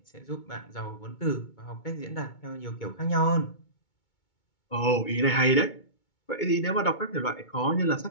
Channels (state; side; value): late; right; 2.2 ms